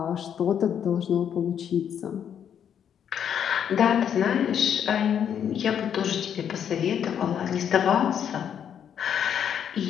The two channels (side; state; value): right; quieter; 8.7 dB